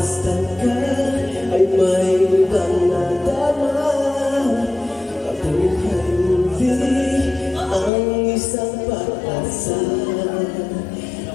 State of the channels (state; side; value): drops out; right; at 7.9 s